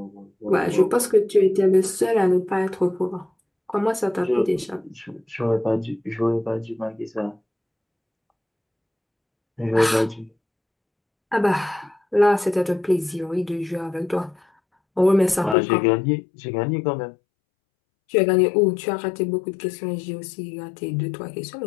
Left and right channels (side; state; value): right; drops out; at 15.6 s